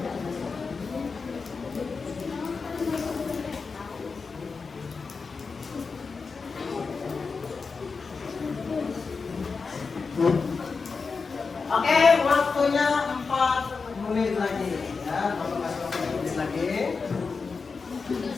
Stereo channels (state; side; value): quieter; right; 4.8 dB